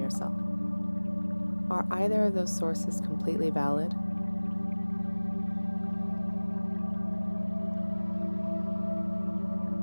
Are either of those sources completely valid?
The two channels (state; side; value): inverted; both; correlation -1.00